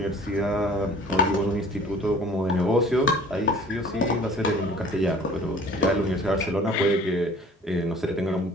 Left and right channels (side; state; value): both; normal; correlation 0.49